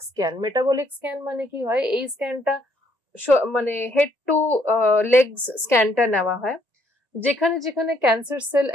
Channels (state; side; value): late; left; 1.9 ms